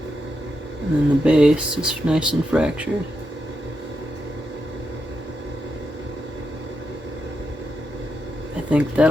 And then the base is nice and fractured. I think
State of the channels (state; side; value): normal; both; correlation 0.85